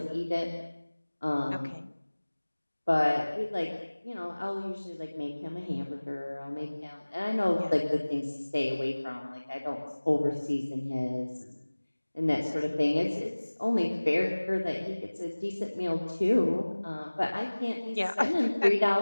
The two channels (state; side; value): inverted; both; correlation -1.00